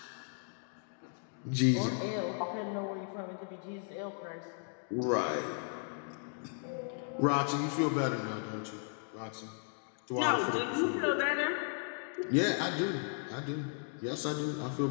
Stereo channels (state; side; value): silent; right; 54 dB below the other